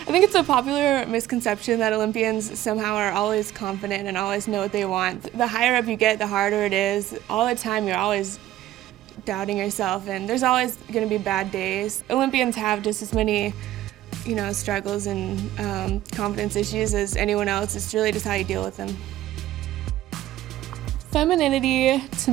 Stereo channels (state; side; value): quieter; left; 14.2 dB